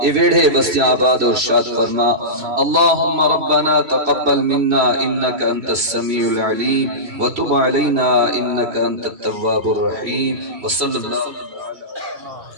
اے ویڑھے بستیاں آباد اور شاد فرما۔ اللہم ربنا تقبل منا انک انت السمیع العلیم وتب علینا انک انت التواب الرحیم وصلی اللہ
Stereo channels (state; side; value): late; left; 3.1 ms